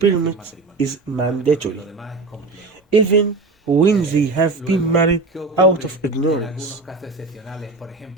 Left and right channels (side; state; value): left; quieter; 3.6 dB